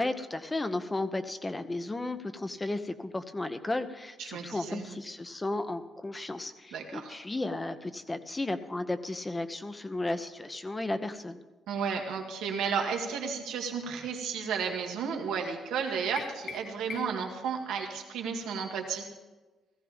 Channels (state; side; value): normal; both; correlation 0.77